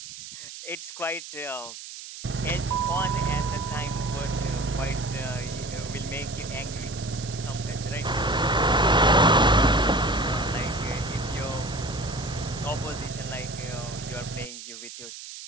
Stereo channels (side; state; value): right; noise; hiss, 12 dB below the sound